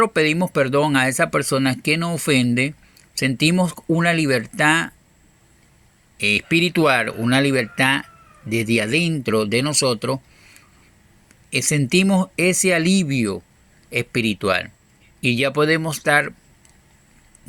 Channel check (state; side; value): identical; both; correlation 1.00